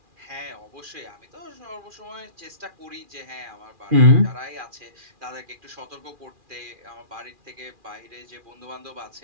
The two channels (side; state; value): left; late; 2.4 ms